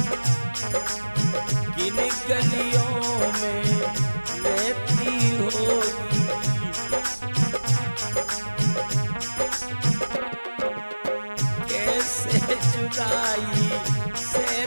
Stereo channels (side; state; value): both; inverted; correlation -1.00